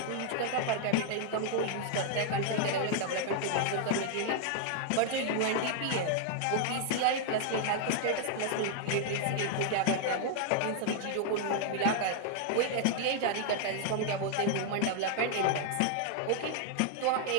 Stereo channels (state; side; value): different; both; correlation 0.00